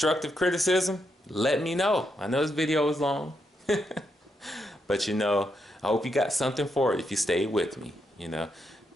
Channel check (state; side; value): normal; both; correlation 0.81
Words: criticism, let me know. I know this video is long, but you know, I hope you got something for it if you stayed with me. You know,